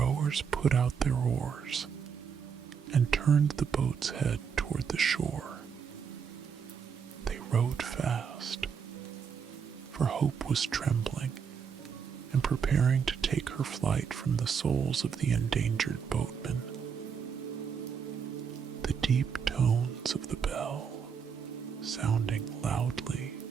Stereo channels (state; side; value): quieter; left; 6.7 dB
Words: put out their oars and turned the boat's head toward the shore. They rowed fast, for hope was trembling and preparing to take her flight from the souls of the endangered boatmen. The deep tones of the bell, sounding loudly